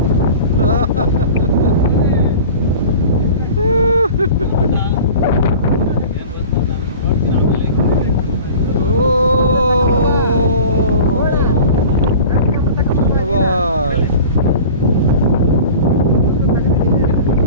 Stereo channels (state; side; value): inverted; both; correlation -0.39